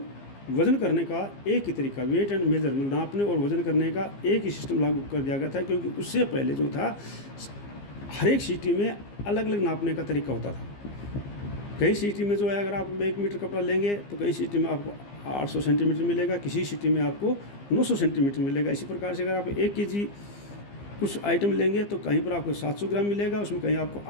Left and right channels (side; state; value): right; late; 15 ms